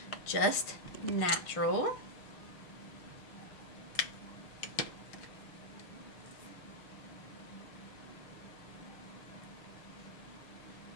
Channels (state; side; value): late; right; 6.4 ms